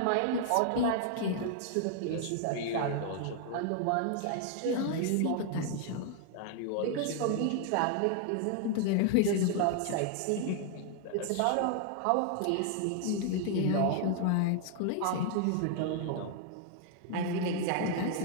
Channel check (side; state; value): both; different; correlation 0.00